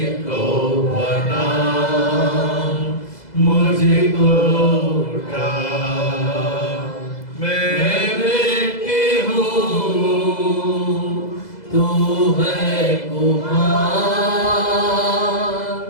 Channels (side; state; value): right; late; 2.0 ms